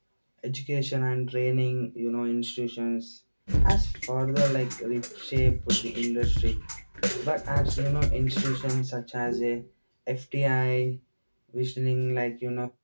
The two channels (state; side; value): inverted; both; correlation -1.00